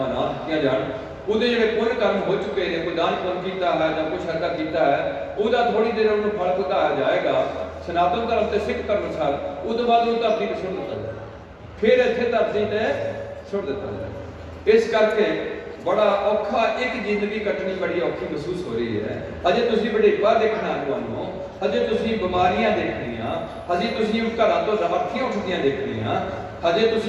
ਨਾ ਦਿੱਤੀਆਂ ਜਾਣ। ਉਹਦੇ ਜਿਹੜੇ ਪੁੰਨ ਕਰਮ ਹੋ ਚੁੱਕੇ ਨੇ, ਕੋਈ ਦਾਨ ਪੁੰਨ ਕੀਤਾ ਹੈ ਜਾਂ ਕੁਛ ਐਸਾ ਕੀਤਾ ਹੈ, ਉਹਦਾ ਥੋੜੀ ਦੇਰ ਉਹਨੂੰ ਫਲ ਭੁਗਤਾਇਆ ਜਾਏਗਾ ਸਨਾਤਨ ਧਰਮ ਤੇ ਸਿੱਖ ਧਰਮ ਅਨੁਸਾਰ। ਉਹ ਤੋਂ ਬਾਅਦ ਉਹ ਧਰਤੀ ਤੇ ਸੁੱਟ ਦਿੱਤਾ ਜਾਏ, ਫਿਰ ਇੱਥੇ ਧਰਤੀ ਤੇ ਸੁੱਟ ਦਿੱਤਾ ਜਾਏ। ਇਸ ਕਰਕੇ ਬੜਾ ਔਖਾ, ਇੱਕ ਜ਼ਿੰਦਗੀ ਕੱਟਣੀ ਬੜੀ ਔਖੀ ਮਹਿਸੂਸ ਹੋ ਰਹੀ ਹੈ। ਅਜੇ ਤੁਸੀਂ ਵਡੇਪਾ ਦੇਖਣਾ ਤੁਹਾਨੂੰ, ਅਜੇ ਤੁਸੀਂ ਬਿਮਾਰੀਆਂ ਦੇਖਣੀਆਂ, ਅਜੇ ਤੁਸੀਂ ਘਰਾਂ ਤੋਂ ਰਾਖੀਆਂ ਉੱਠਦੀਆਂ ਦੇਖਣੀਆਂ, ਅਜੇ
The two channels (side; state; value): both; identical; correlation 1.00